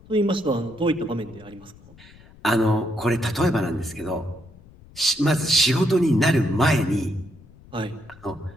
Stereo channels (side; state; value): left; noise; rumble, 23 dB below the sound